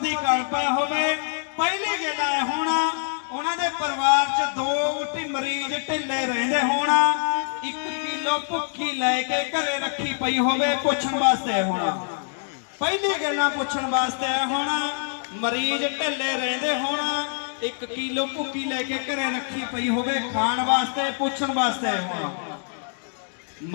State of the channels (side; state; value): right; silent; 62 dB below the other